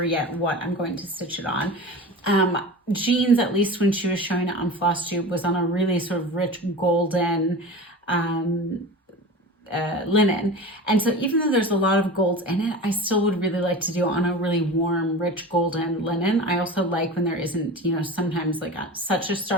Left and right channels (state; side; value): normal; both; correlation 0.32